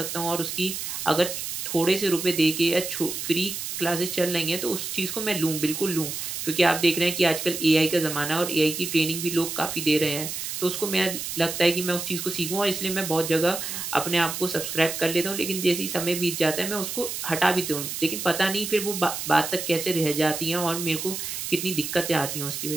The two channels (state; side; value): noise; right; hiss, 5 dB below the sound